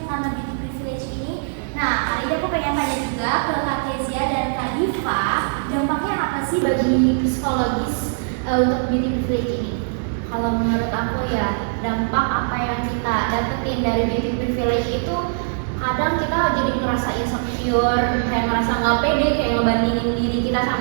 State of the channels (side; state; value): left; silent; digital silence